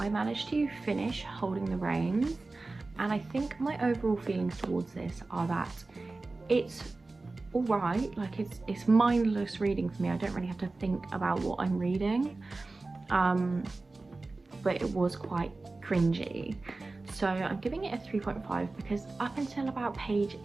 managed to finish Holding the Reins, and I think my overall feelings towards this are that it's alright, like it's mindless reading for me. I don't really have to think about what I'm reading, but it was quite cringy. So I'm giving it a 3.5 because up until about page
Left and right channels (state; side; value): quieter; left; 3.4 dB